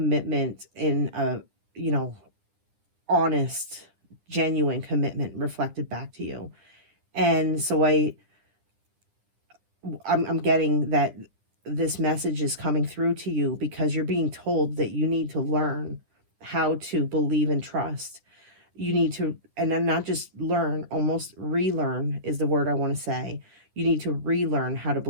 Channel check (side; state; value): left; late; 9.9 ms